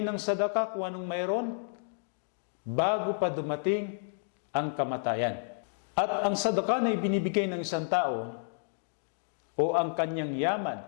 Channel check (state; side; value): silent; right; digital silence